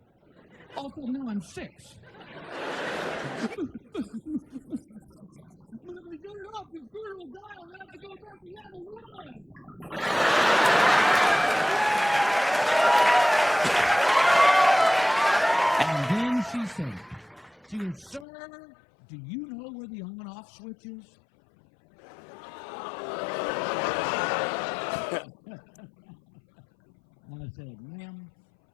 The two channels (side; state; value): right; drops out; at 18.2 s